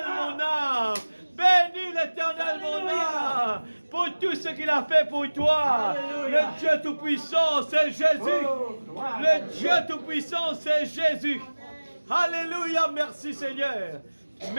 mon âme. Bénis l'Éternel, mon âme. Pour tout ce qu'il a fait pour toi. Le Dieu Tout-Puissant, c'est Jésus. Le Dieu Tout-Puissant, c'est Jésus. Alléluia, merci Seigneur.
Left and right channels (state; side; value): inverted; both; correlation -1.00